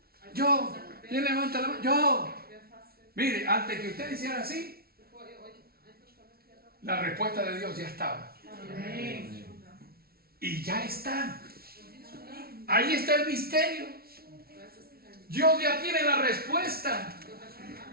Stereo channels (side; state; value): left; late; 0.44 ms